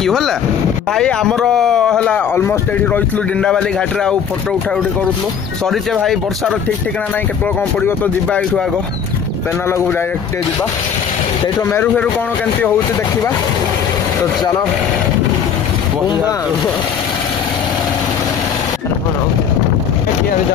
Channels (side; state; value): right; quieter; 7.6 dB